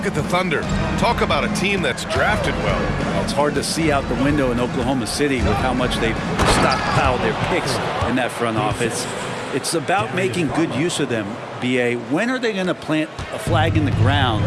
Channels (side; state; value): both; identical; correlation 1.00